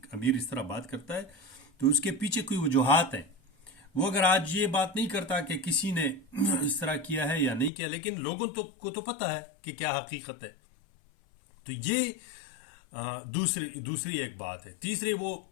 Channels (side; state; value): right; drops out; at 7.7 s